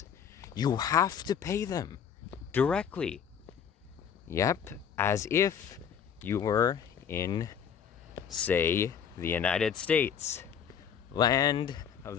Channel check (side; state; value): right; quieter; 7.8 dB